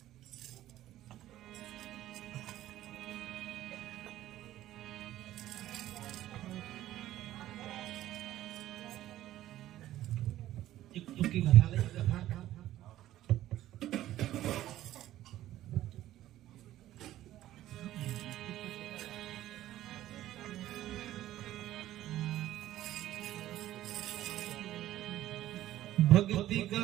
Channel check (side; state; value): left; quieter; 13.8 dB